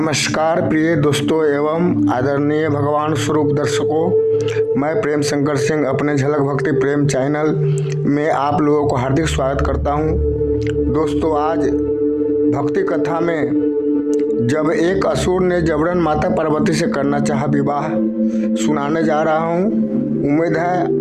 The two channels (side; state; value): both; identical; correlation 1.00